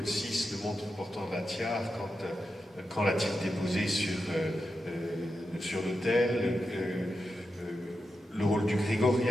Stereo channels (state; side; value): normal; both; correlation 0.88